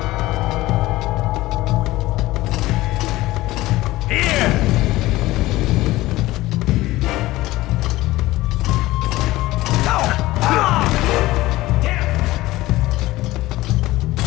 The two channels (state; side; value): quieter; right; 17.8 dB